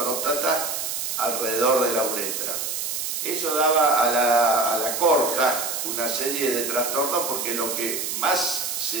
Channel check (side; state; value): right; noise; hiss, 3 dB below the sound